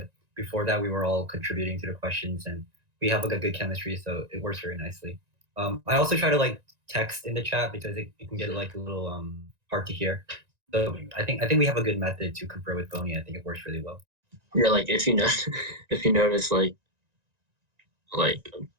before that, we were all contributing to the questions, and we have like a good chemistry, so it works very nicely. I also try to like text in the chat because it can get like a little hard to hear. So I think we have a good method to confer with Boney. I think it works really well. Yeah, like if you know, if you notice, like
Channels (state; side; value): late; left; 1.9 ms